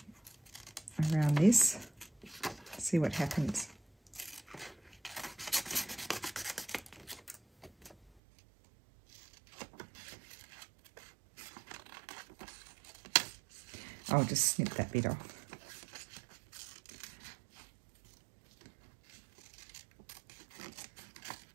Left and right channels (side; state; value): left; drops out; at 8.1 s